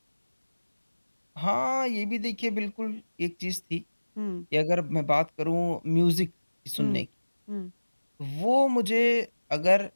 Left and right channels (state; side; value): inverted; both; correlation -1.00